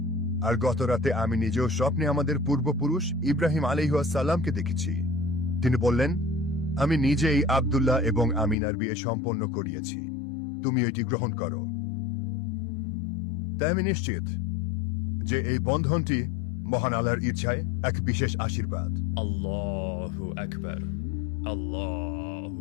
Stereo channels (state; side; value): drops out; right; at 8.6 s